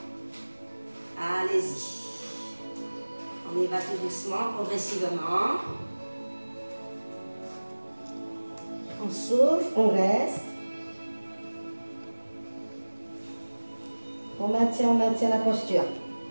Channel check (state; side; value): inverted; both; correlation -1.00